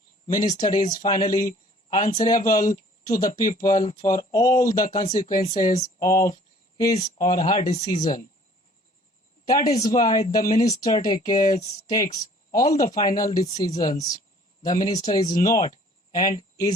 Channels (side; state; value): both; normal; correlation 0.54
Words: Minister is finally answerable to the people for all the consequences of his or her decision. That is why the minister takes all the final decisions. The minister is not and